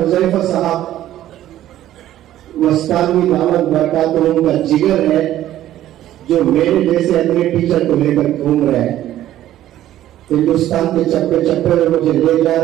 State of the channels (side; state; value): left; quieter; 13.1 dB